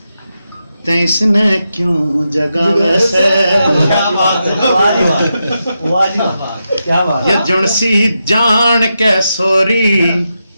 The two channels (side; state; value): both; inverted; correlation -0.87